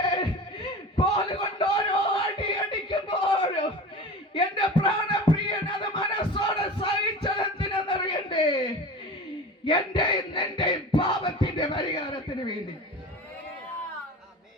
കോലുകൊണ്ട് ഓരോ അടി അടിക്കുമ്പോഴും എന്റെ പ്രാണപ്രിയൻ അത് മനസ്സോടെ സഹിച്ചതെന്തിനെന്നറിയണ്ടേ? എന്റെ നിന്റെ പാപത്തിന്റെ പരിഹാരത്തിന് വേണ്ടി.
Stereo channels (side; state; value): both; normal; correlation 0.34